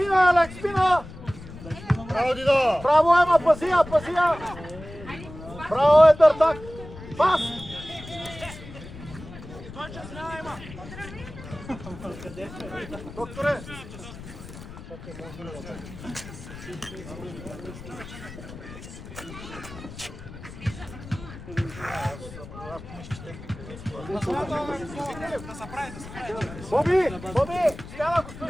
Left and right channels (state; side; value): noise; left; rumble, 14 dB below the sound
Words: Алекс, спина! Браво, Дидо! Браво, Ема, пази я! Браво, Едъртак! Пас! Докторе! Боби! Стяна го